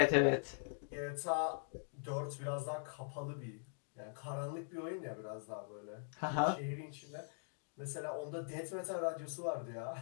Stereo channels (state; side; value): silent; right; digital silence